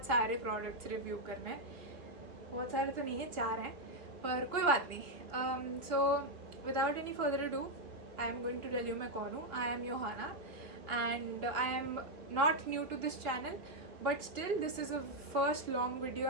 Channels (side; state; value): left; late; 2.8 ms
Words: सारे प्रोडक्ट्स रिव्यू करने। बहुत सारे तो नहीं है, 4 हैं, पर कोई बात नहीं। So without any further do I am going to tell you मैं कौन हूँ। I am Yohana and I am not new to this channel, but still this is a first long video